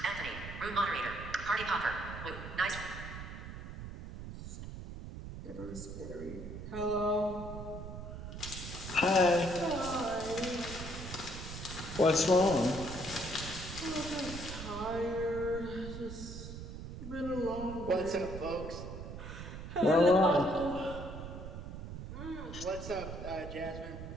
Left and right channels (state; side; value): noise; right; rumble, 9 dB below the sound